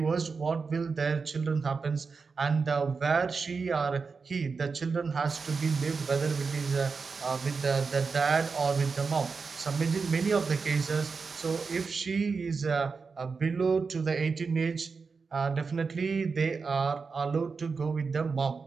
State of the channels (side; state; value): left; quieter; 4.8 dB